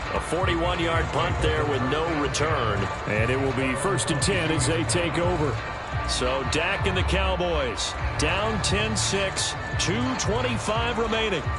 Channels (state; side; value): identical; both; correlation 1.00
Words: A 41-yard punt there with no return. And it will be 1st and 10 as they take over. So Dak and the Cowboys down 10-6, 2:25 remaining.